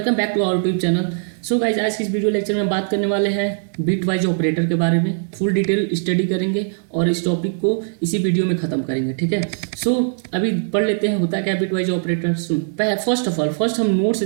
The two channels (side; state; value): left; silent; digital silence